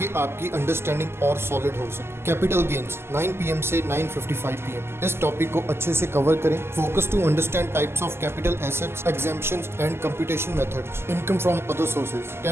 आपकी अंडरस्टैंडिंग और सॉलिड हो सके। कैपिटल गेन्स 9 PM से 9:55 PM। इस टॉपिक को अच्छे से कवर करें। Focus to understand types of capital assets, exemptions and computation methods. Income from other sources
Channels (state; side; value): late; left; 0.12 ms